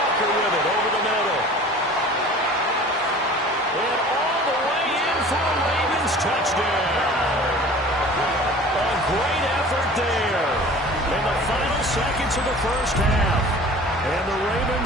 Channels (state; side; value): normal; both; correlation 0.44